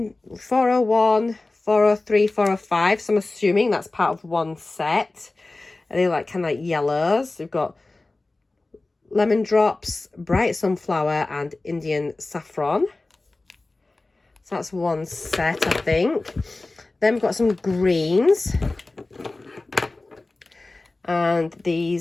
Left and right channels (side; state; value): right; quieter; 3.1 dB